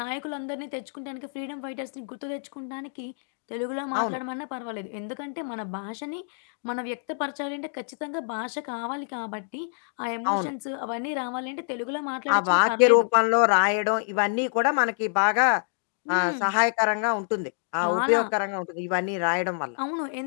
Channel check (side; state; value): right; silent; digital silence